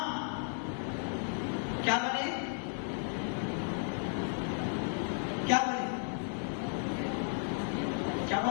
क्या बने? क्या बने? क्या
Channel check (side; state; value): right; silent; 55 dB below the other